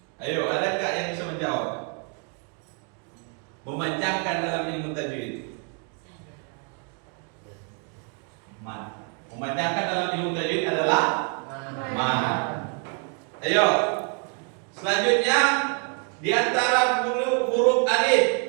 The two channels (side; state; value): left; quieter; 38.8 dB